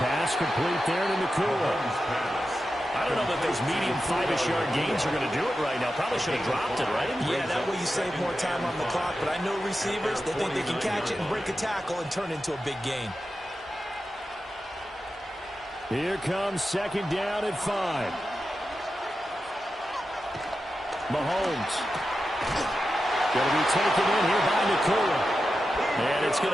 complete there to Nakua. I don't know that those medium 5-ish yard gains are going to do it right now. Probably should have dropped it, right? Yeah, that way you save more time on the clock. But I know receivers, they think they can catch it and break a tackle and turn into a big gain. Here comes second down at 5. Mahomes. Going to be taken in here by Nakua. And it's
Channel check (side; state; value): both; normal; correlation 0.91